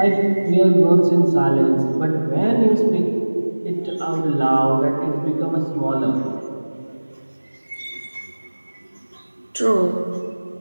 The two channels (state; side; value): inverted; both; correlation -1.00